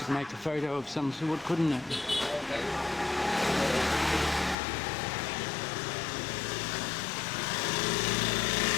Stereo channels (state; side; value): drops out; right; at 4.5 s